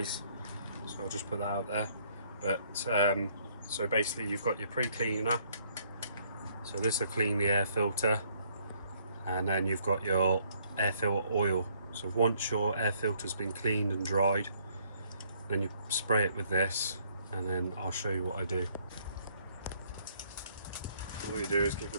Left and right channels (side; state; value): both; inverted; correlation -0.66